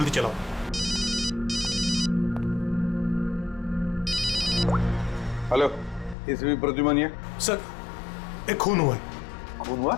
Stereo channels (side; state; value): right; drops out; at 6.2 s